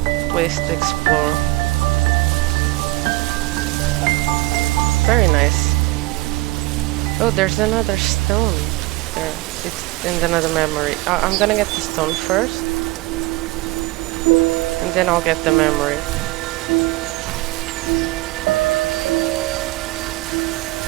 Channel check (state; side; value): quieter; left; 20.4 dB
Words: place to explore. Very nice. Oh, there's another stone there. It's in another memory. I'm gonna get the stone first, and then I'll get the memory.